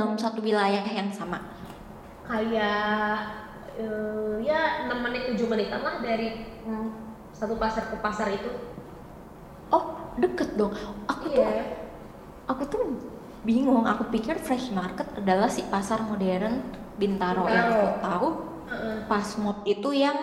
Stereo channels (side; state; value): both; identical; correlation 1.00